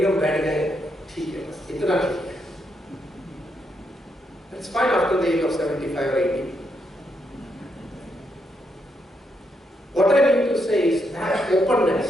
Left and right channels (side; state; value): both; normal; correlation 0.79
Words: हम बैठ गए, ठीक है बस इतना ठीक है. It's fine after the age of 75 or 80. What I mean to say is that openness